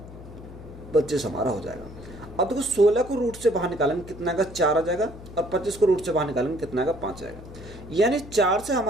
25 हमारा हो जाएगा। अब देखो 16 को रूट से बाहर निकालेंगे कितना आएगा, 4 आ जाएगा, और 25 को रूट से बाहर निकालेंगे कितना आएगा, 5 आएगा। यानी 4 से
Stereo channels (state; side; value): noise; left; hum, 16 dB below the sound